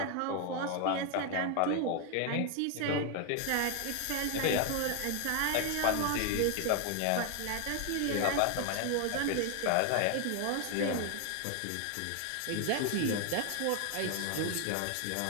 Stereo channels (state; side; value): different; both; correlation 0.01